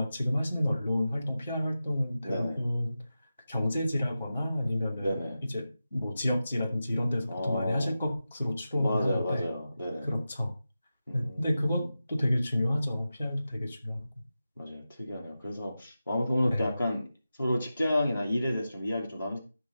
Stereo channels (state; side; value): inverted; both; correlation -0.92